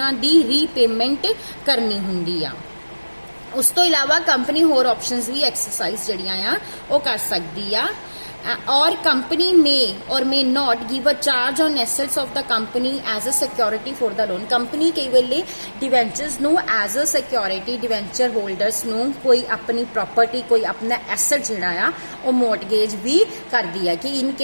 रीपेमेंट करनी होंगी आ। उस तो इलावा कंपनी होर ऑप्शंस भी एक्सरसाइज जड़ियां आ वो कर सकती आ। और company may or may not give a charge on assets of the company as a security for the loan. Company कई वेले डिवेंचर्स नू as a security debenture holders नू कोई अपनी प्रॉपर्टी कोई अपना एसेट जिहड़ा आ वो मोर्टगेज भी करदी है कि इन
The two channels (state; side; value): inverted; both; correlation -1.00